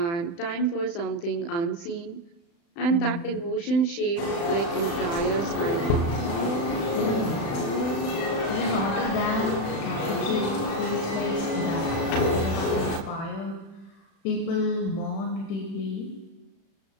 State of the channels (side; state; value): right; late; 36 ms